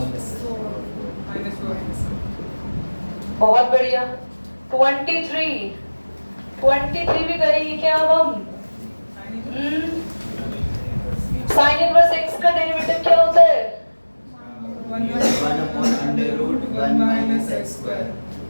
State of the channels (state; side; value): inverted; both; correlation -1.00